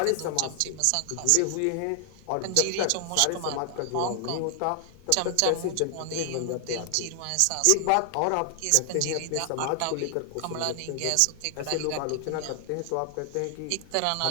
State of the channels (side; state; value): both; different; correlation 0.00